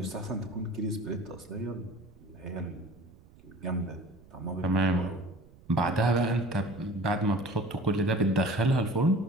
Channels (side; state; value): right; noise; rumble, 24 dB below the sound